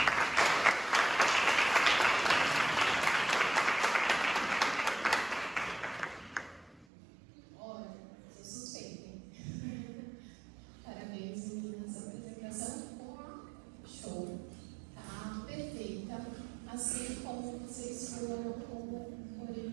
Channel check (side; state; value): left; drops out; at 6.9 s